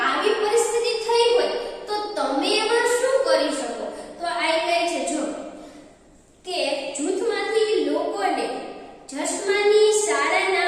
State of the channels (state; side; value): identical; both; correlation 1.00